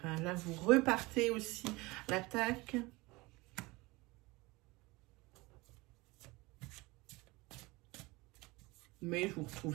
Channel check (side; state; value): left; quieter; 23.0 dB